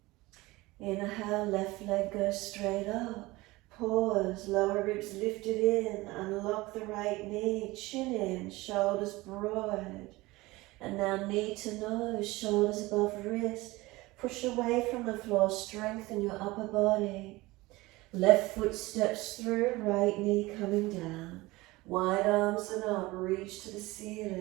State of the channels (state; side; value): quieter; left; 20.8 dB